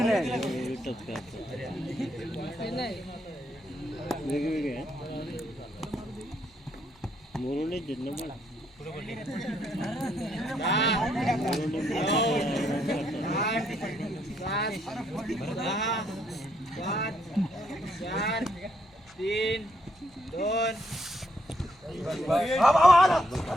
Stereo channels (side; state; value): both; normal; correlation 0.74